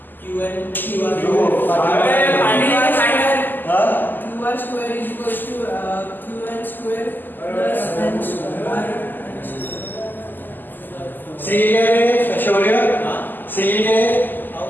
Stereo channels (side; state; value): right; late; 0.089 ms